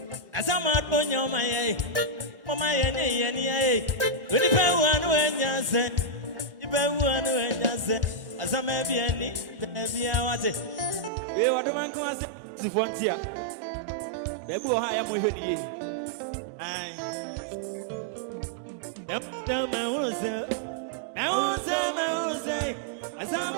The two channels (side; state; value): left; drops out; at 11.1 s